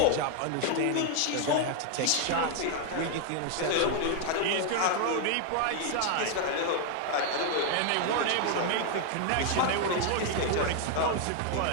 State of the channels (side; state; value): both; different; correlation 0.00